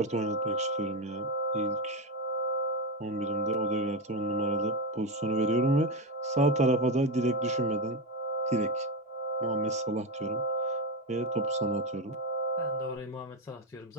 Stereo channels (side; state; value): both; normal; correlation 0.13